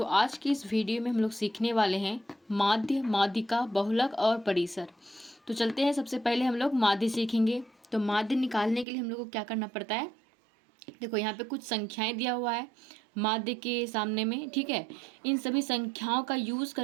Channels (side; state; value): left; drops out; at 8.8 s